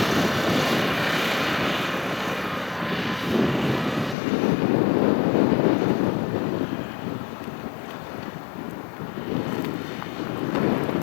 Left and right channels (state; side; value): drops out; right; at 4.2 s